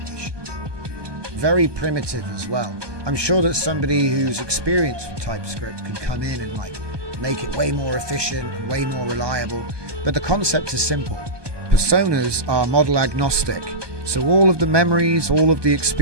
Very primitive as well. I'm sure that somebody who's experienced with TypeScript could come in and like make it way more efficient and way more reliable. But the concept is simple. Personas are model agnostic. So all of the memories, all of the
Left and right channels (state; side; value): late; left; 1.2 ms